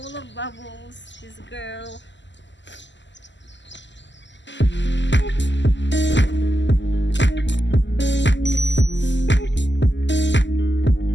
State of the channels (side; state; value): right; late; 0.53 ms